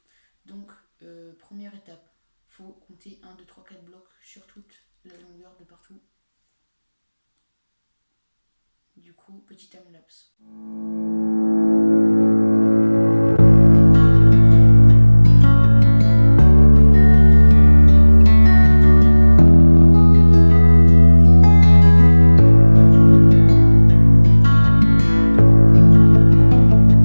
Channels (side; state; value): both; inverted; correlation -1.00